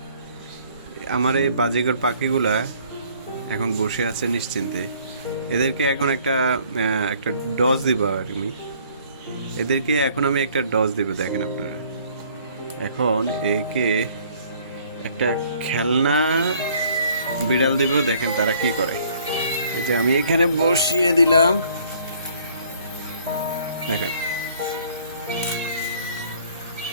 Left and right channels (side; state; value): both; inverted; correlation -0.59